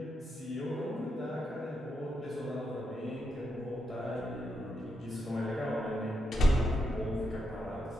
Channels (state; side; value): normal; both; correlation 0.83